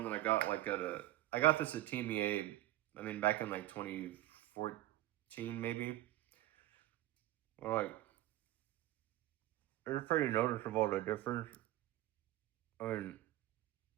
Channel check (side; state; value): left; quieter; 15.9 dB